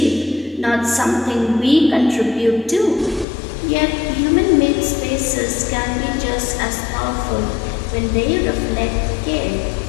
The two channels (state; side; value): drops out; right; at 3.2 s